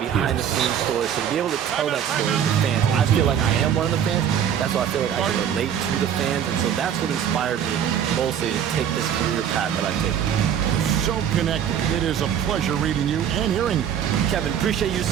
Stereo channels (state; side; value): quieter; left; 9.0 dB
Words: stories, so to be able to tell that story to the fans. I feel like I am one of the fans. That's why I feel like I can relate to the fans, and so that's what inspired me mostly to take this career path that I've taken. So connected. It is a pleasure reading you and hearing you. Kevin, appreciate you